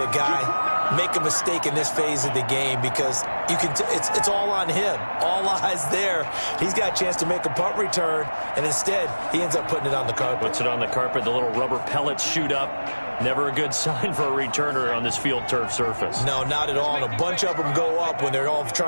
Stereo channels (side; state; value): both; inverted; correlation -1.00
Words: guy make a mistake in this phase of the game because you can it's all on him. All eyes there. He's got a chance to make a punt return, and instead he ends up putting it on the carpet. Puts it on the carpet. The little rubber pellets shoot up. Never a good sign for a returner on this field turf surface. No, not at all. And a bunch of them go up when they're all